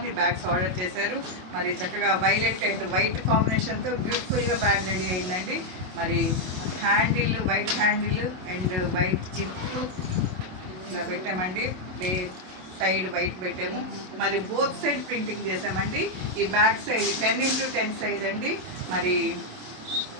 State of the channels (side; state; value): left; late; 27 ms